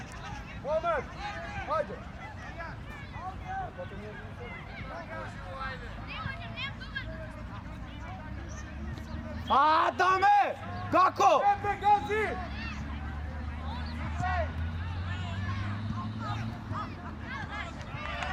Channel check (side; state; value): both; identical; correlation 1.00